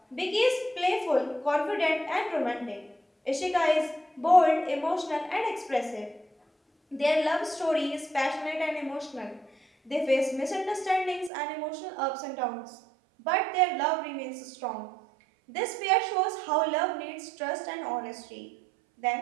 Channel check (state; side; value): drops out; left; at 11.3 s